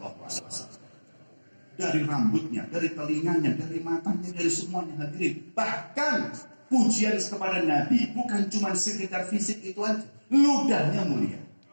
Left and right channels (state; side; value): inverted; both; correlation -1.00